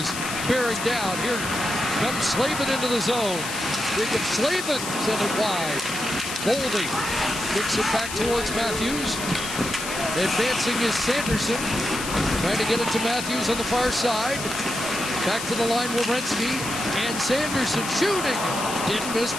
bearing down. Here comes Slavin into the zone. Jacob Slavin sent it wide. Boldy kicks it back towards Matthews. Advancing is Sanderson. Trying to get it to Matthews on the far side. Back to the line, Werenski. And Sanderson shooting. Didn't miss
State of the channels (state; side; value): noise; left; hiss, 7 dB below the sound